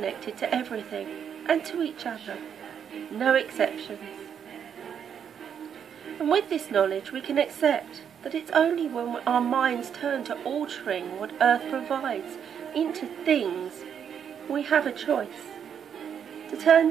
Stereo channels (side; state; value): left; quieter; 8.1 dB